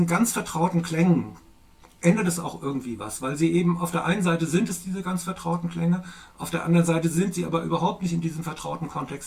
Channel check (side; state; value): both; identical; correlation 1.00